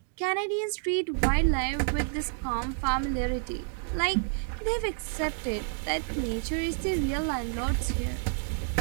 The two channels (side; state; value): left; silent; 58 dB below the other